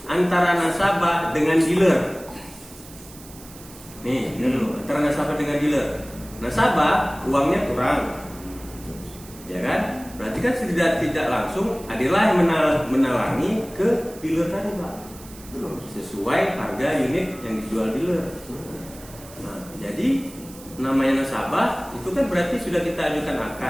antara nasabah dengan dealer. Nih, ini dulu antara nasabah dengan dealer. Nasabah uangnya kurang, ya kan? Berarti kan tidak langsung adalah yang menalangi ke dealer tadi, Pak. Sesuai harga unit yang dijual dealer. Nah, jadi namanya nasabah itu kan berarti sudah kita ajukan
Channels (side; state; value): right; noise; hiss, 19 dB below the sound